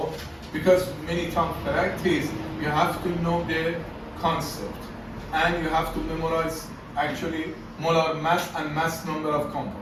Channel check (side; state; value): both; identical; correlation 1.00